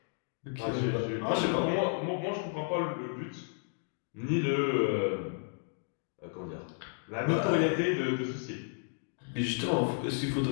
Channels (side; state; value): right; silent; digital silence